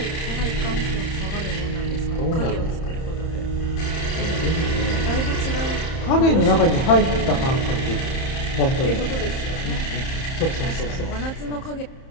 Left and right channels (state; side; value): late; right; 30 ms